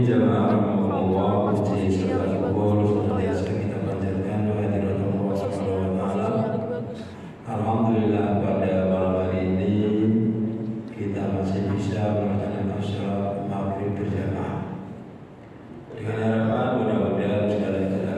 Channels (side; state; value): both; identical; correlation 1.00